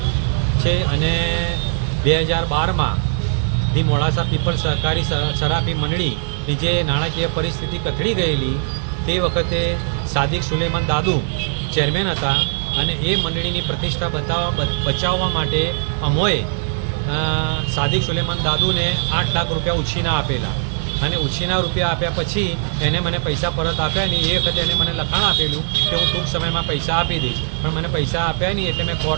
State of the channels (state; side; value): silent; left; 57 dB below the other